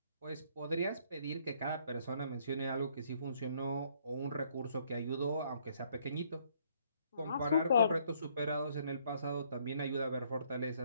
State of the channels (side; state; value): both; inverted; correlation -0.66